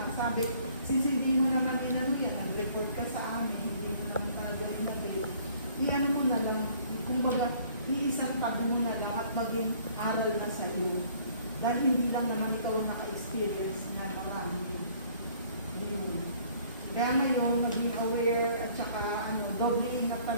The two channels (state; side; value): inverted; both; correlation -0.57